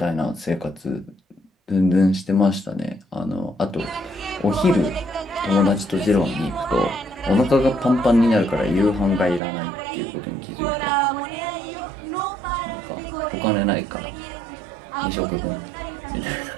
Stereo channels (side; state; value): left; drops out; at 9.4 s